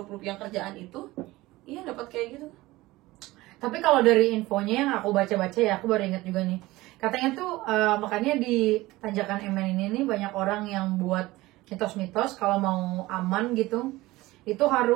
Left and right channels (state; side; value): quieter; left; 19.1 dB